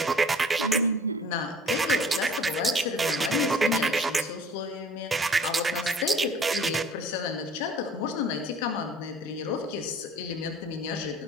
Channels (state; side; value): normal; both; correlation 0.49